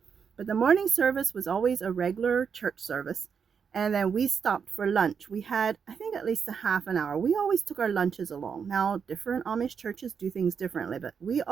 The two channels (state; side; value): quieter; left; 6.6 dB